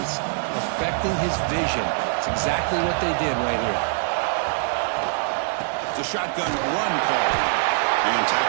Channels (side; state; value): left; silent; digital silence